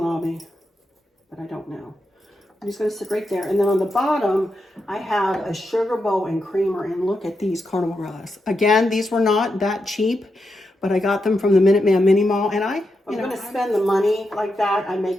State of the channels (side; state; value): both; normal; correlation 0.86